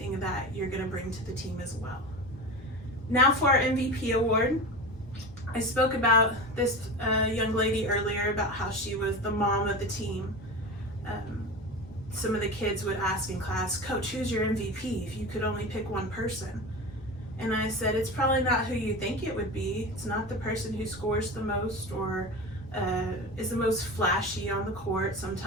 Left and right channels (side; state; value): both; normal; correlation 0.29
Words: that you're going to bring to the team as well. Now for our MVP award. I spoke about this young lady earlier about how she was the mom of the team. Some of the kids would ask in class, Coach, who's your MVP if you could only pick one person? And I said, it's probably not who you think it would be. It's not the person who scores the most or is the most flashy on the court